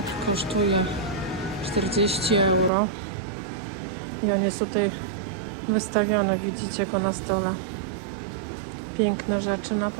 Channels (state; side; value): drops out; left; at 2.7 s